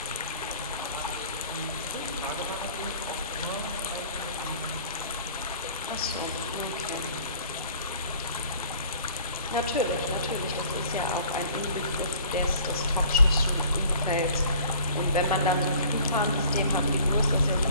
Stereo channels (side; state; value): both; inverted; correlation -0.50